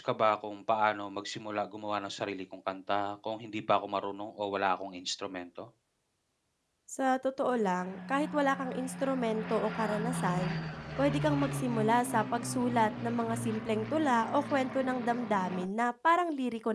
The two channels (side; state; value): both; identical; correlation 1.00